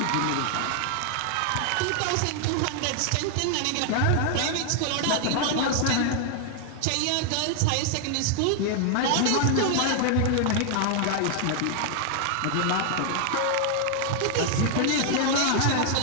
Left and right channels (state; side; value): different; both; correlation 0.00